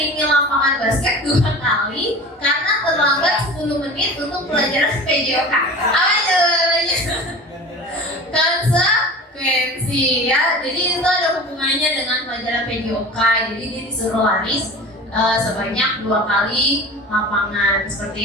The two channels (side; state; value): both; normal; correlation 0.37